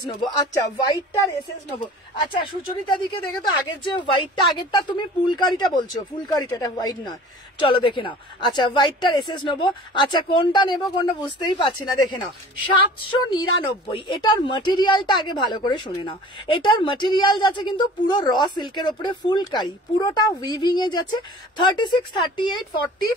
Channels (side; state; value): both; normal; correlation 0.44